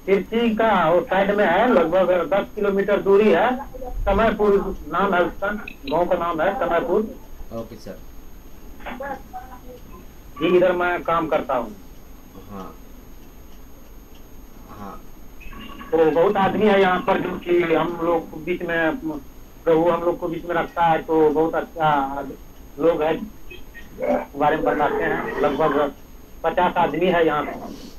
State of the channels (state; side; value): identical; both; correlation 1.00